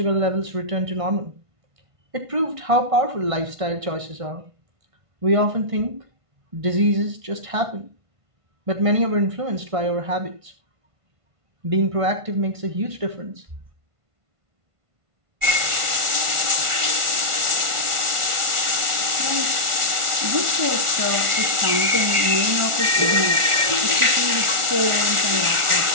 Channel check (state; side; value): late; left; 1.4 ms